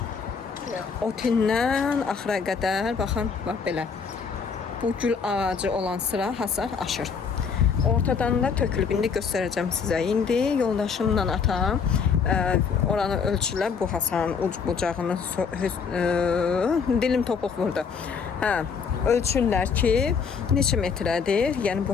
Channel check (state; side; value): quieter; right; 5.9 dB